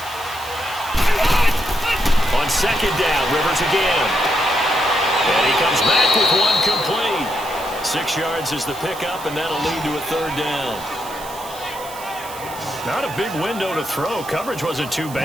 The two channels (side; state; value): right; noise; hiss, 16 dB below the sound